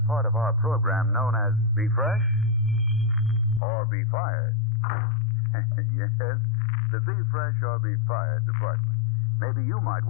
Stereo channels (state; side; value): drops out; right; at 3.6 s